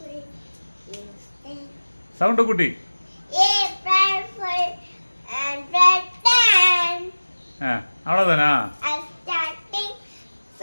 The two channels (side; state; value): both; inverted; correlation -1.00